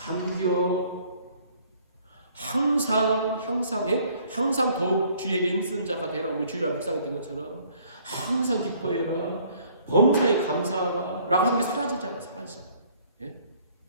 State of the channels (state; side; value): inverted; both; correlation -0.59